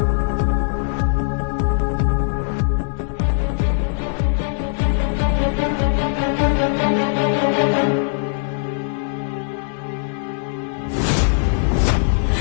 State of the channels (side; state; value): right; silent; digital silence